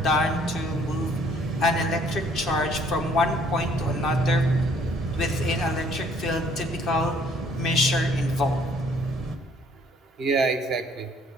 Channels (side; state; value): both; normal; correlation 0.61